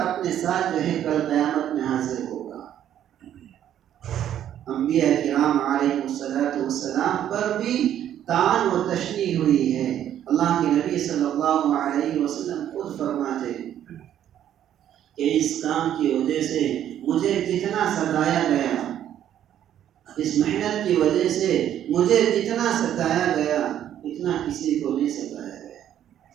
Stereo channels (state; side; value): quieter; left; 10.7 dB